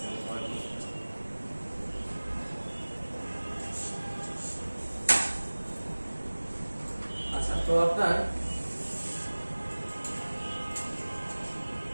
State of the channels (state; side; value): inverted; both; correlation -1.00